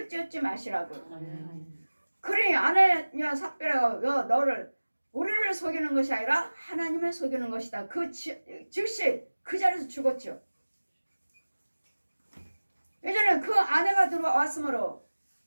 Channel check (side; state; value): both; inverted; correlation -1.00